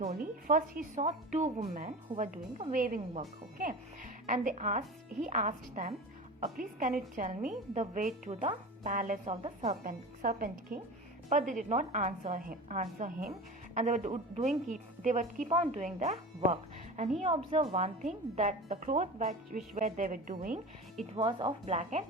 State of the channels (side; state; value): both; normal; correlation 0.32